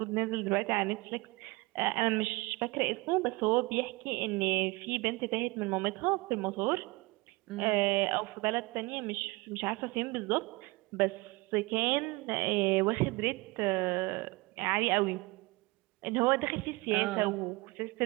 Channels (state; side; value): quieter; left; 23.8 dB